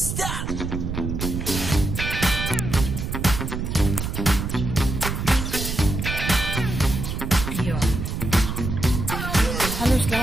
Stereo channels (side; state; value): right; noise; rumble, 3 dB below the sound